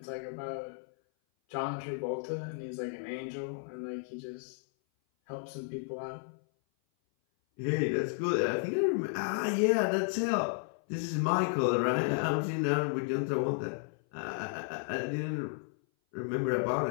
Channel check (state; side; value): silent; right; 56 dB below the other